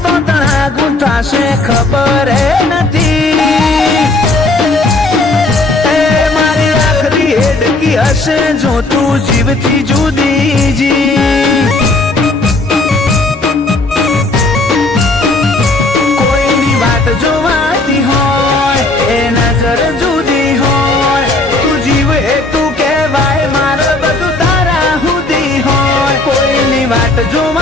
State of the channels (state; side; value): quieter; right; 3.0 dB